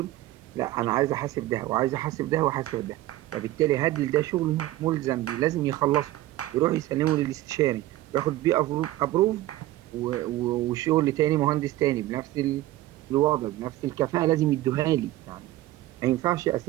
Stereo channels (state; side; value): quieter; left; 15.9 dB